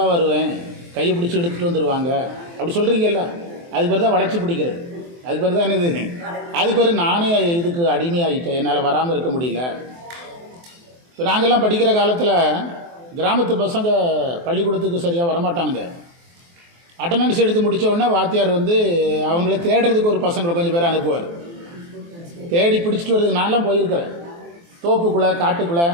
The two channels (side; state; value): left; late; 23 ms